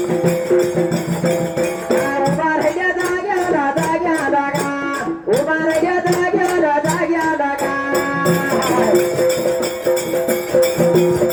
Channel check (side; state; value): both; identical; correlation 1.00